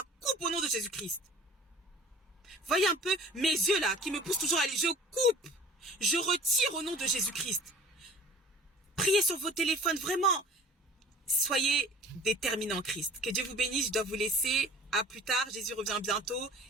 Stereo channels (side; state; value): both; normal; correlation 0.47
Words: coupe au nom de Jésus-Christ. Voyez un peu mes yeux là, qui me poussent toujours à aller. Je coupe. Je retire au nom de Jésus-Christ. Priez sur vos téléphones, vraiment. soyez déterminés en Christ. Que Dieu vous bénisse, je dois vous laisser. À plus tard, Jésus revient bientôt